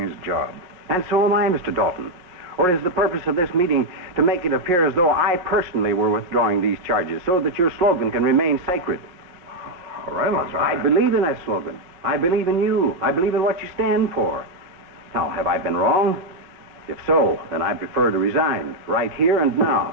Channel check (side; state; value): left; late; 5.5 ms